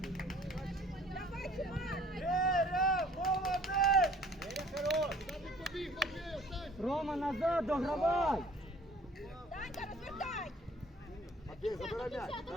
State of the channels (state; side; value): normal; both; correlation 0.54